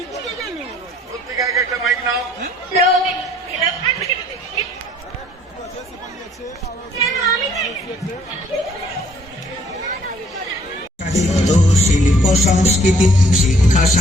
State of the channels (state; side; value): normal; both; correlation 0.62